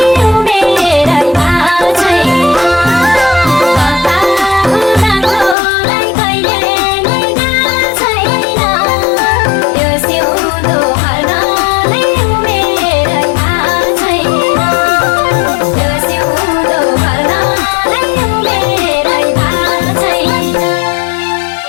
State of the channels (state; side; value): drops out; right; at 5.6 s